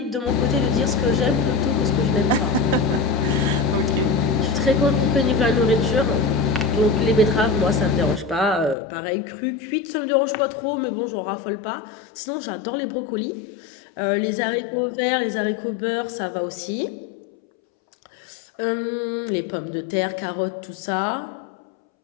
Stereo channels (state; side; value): drops out; right; at 8.8 s